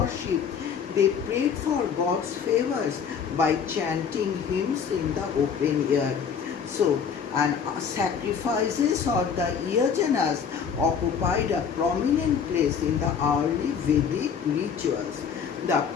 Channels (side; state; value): right; quieter; 6.9 dB